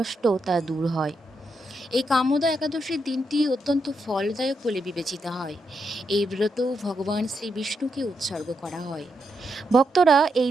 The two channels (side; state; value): both; normal; correlation 0.82